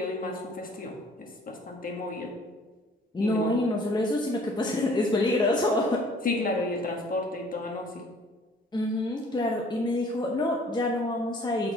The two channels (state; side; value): normal; both; correlation 0.55